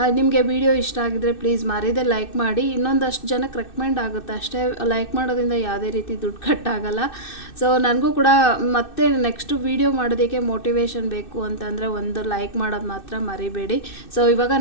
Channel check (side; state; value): right; late; 2.6 ms